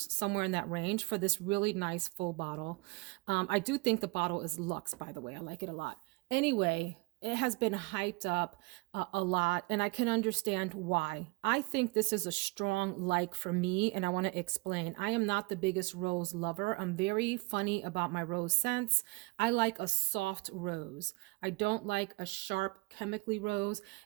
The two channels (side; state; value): left; quieter; 25.1 dB